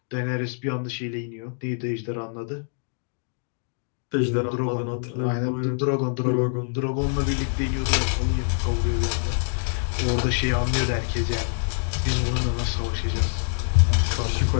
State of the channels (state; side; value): silent; right; 62 dB below the other